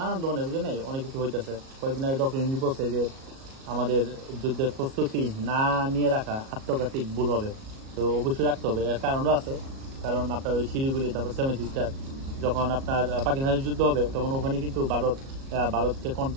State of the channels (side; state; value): left; late; 37 ms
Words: ধরনের, বুঝলেন, অনেক কিছু হইতেছে। কয়েকদিন আগে ডক্টর ইন্দি বলছে যে আমাদের যুদ্ধের প্রস্তুতি না নিয়ে রাখা আত্মঘাতিক ভুল হবে। তো অবশ্যই রাখতে হবে, এর কারণও আছে। কারণ আপনার ওই শিলিগুড়ি, তারপর 7 সিস্টার, যখন আপনার পাকিস্তানের যুদ্ধ হবে তখন ওখানে কিন্তু ভারতকে